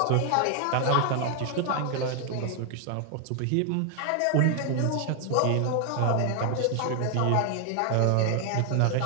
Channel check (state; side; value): different; both; correlation 0.00